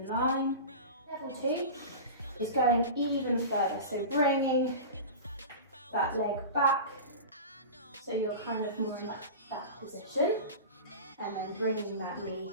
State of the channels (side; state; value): both; inverted; correlation -0.31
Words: line. Level 2 is going even further, so bringing that leg back so you're kind of more in that position, and then bringing that knee